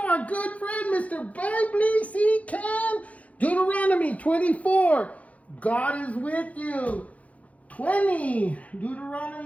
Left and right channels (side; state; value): right; late; 0.067 ms